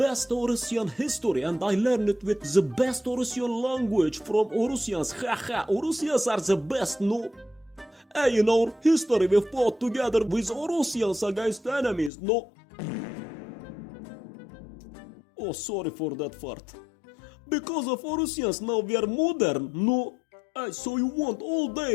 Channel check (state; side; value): drops out; right; at 12.1 s